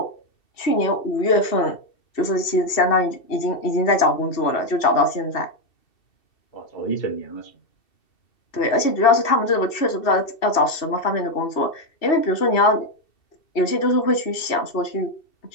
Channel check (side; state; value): right; late; 2.7 ms